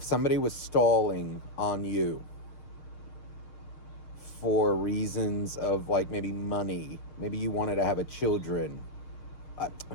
somebody was stalling on you for reasons of like maybe money, maybe you wanted to have children.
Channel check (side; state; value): right; late; 6.5 ms